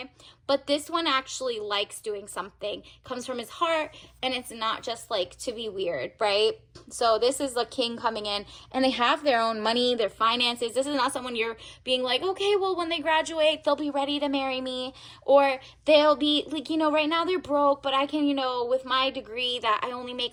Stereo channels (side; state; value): both; identical; correlation 1.00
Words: But this one actually likes doing something. Comes from his heart, and it's not just, like, to be weird, right? So this is the king coming in, and they have their own money, their finances. This is not someone you're being like, okay, well, when they graduate, they'll be ready to marry me. Or they'll be, like, right now they're broke, but I can, with my degree that I only